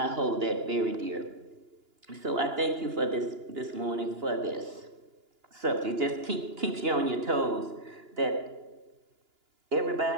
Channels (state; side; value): late; left; 2.9 ms